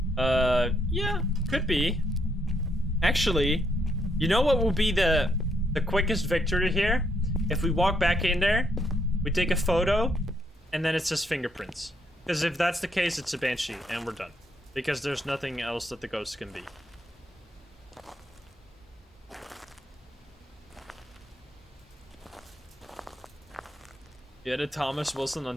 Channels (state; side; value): normal; both; correlation 0.75